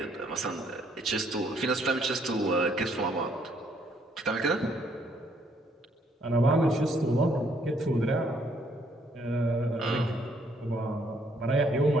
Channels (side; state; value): both; normal; correlation 0.68